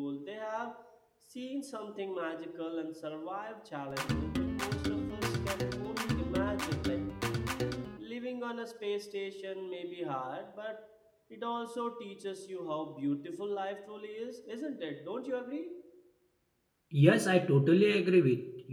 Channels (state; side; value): identical; both; correlation 1.00